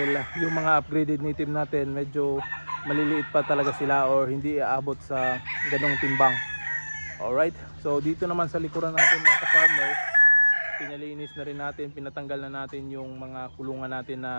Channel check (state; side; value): inverted; both; correlation -1.00